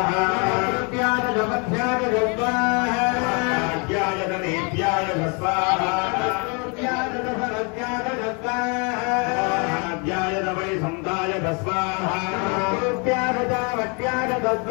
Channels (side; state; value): right; quieter; 33.9 dB